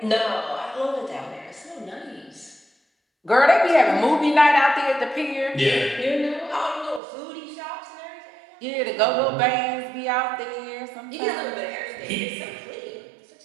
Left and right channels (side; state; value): left; drops out; at 7.0 s